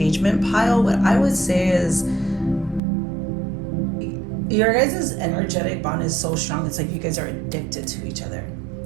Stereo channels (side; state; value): left; drops out; at 2.8 s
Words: pile, what I would say is your guys' energetic bond is so strong. It's like you guys are addicted to each other.